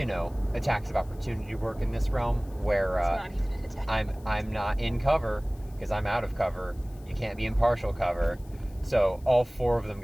attacks of opportunity work in this realm, where it's not even an attack. I'm not in cover, because I'm out of cover. You can't be in partial cover. So all 4 of them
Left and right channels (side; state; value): left; noise; hiss, 27 dB below the sound